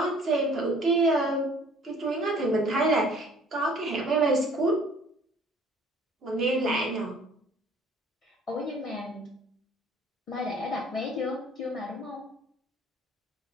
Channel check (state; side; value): normal; both; correlation 0.54